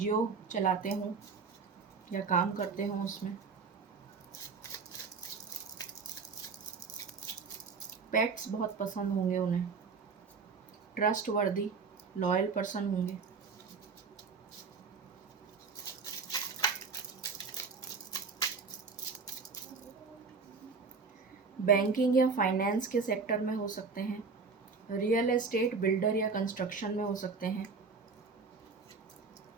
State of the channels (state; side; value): quieter; left; 4.9 dB